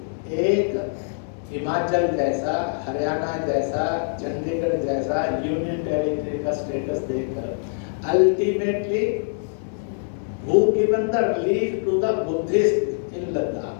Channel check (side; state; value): right; silent; digital silence